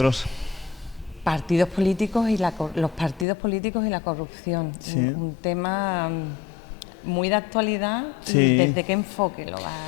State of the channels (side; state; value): right; drops out; at 3.2 s